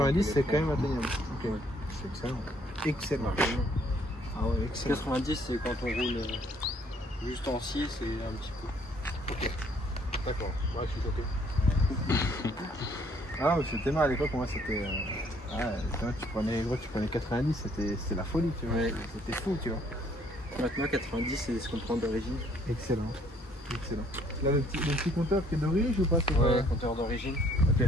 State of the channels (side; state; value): both; normal; correlation 0.63